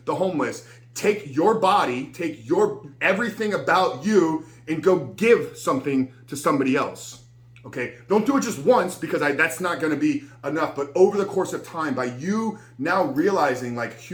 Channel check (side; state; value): both; identical; correlation 1.00